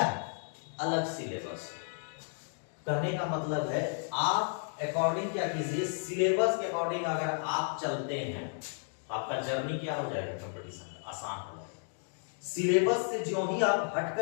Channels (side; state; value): right; silent; 56 dB below the other